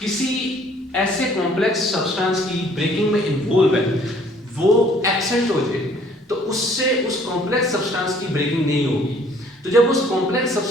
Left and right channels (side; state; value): both; normal; correlation 0.58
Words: किसी ऐसे कॉम्प्लेक्स सब्सटेंस की ब्रेकिंग में इन्वॉल्व है वो एब्सेंट हो जाए, तो उससे उस कॉम्प्लेक्स सब्सटेंस की ब्रेकिंग नहीं होगी। तो जब उस कॉम्प्लेक्स